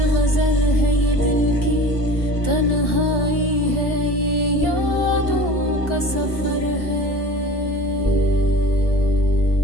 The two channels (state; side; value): late; right; 1.4 ms